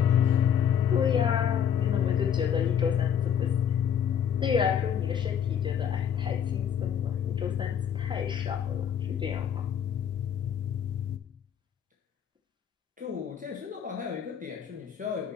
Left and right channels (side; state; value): right; quieter; 8.5 dB